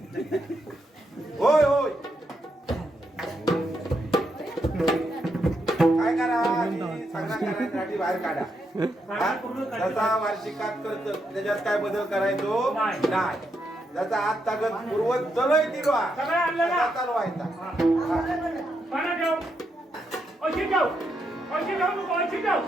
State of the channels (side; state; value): both; normal; correlation 0.81